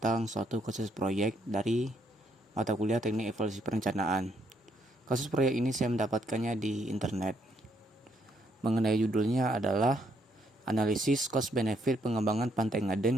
suatu kasus proyek dari mata kuliah Teknik Evaluasi Perencanaan. Kasus proyek ini saya mendapatkannya di internet. Mengenai judulnya adalah Analisis Cost Benefit Pengembangan Pantai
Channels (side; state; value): both; normal; correlation 0.73